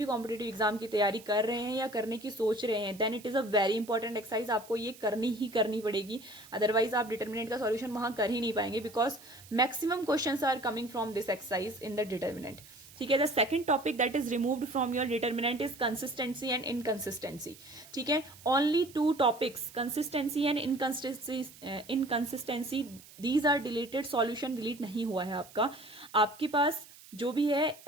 कॉम्पिटिटिव एग्जाम की तैयारी कर रहे हैं या करने की सोच रहे हैं, then it is a very important exercise. आपको ये करनी ही करनी पड़ेगी, अदरवाइज आप डिटर्मिनेंट का सॉल्यूशन वहां कर ही नहीं पाएंगे, because maximum questions are coming from this exercise in the determinant. ठीक है, the second topic that is removed from your determinant is consistency and inconsistency. ठीक है, only two topics, consistency and inconsistency, these are deleted. Solution delete नहीं हुआ है आपका। आपके पास जो भी है,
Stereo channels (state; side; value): noise; right; hiss, 21 dB below the sound